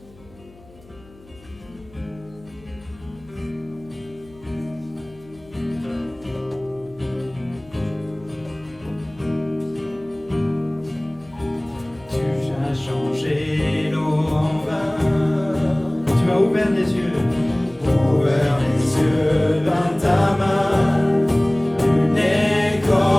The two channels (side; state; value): left; noise; hum, 25 dB below the sound